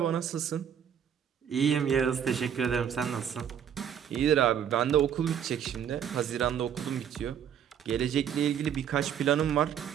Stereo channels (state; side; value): quieter; left; 8.8 dB